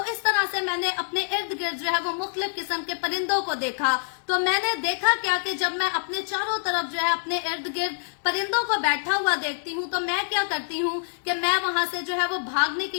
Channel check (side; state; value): right; silent; 61 dB below the other